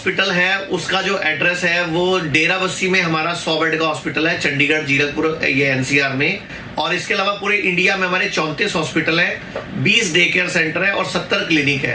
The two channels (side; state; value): both; identical; correlation 1.00